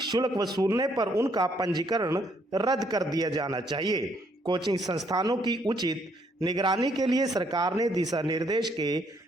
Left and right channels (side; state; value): both; normal; correlation 0.69